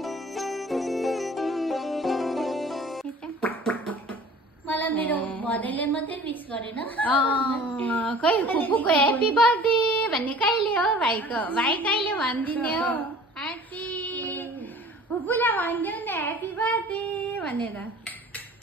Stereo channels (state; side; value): normal; both; correlation 0.46